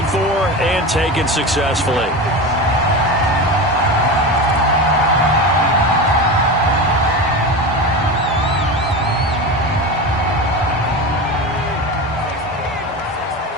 for and taken successfully.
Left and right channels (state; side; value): normal; both; correlation 0.25